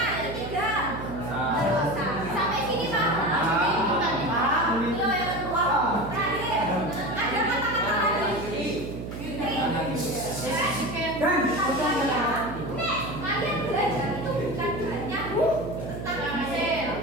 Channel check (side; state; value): right; noise; hum, 8 dB below the sound